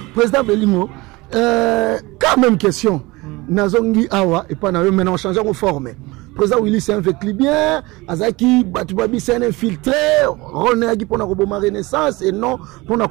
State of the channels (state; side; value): quieter; left; 22.4 dB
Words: Président Belingo, quand même question. Nazongi Awa et pas maintenant on change de forme. Président Willy c'est un fait bien. Azaki Batubabi c'est un infiltré. René Agi pour la Renaissance et non pour la